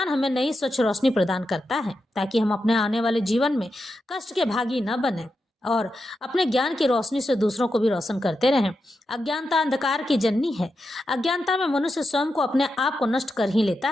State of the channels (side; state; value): both; normal; correlation 0.88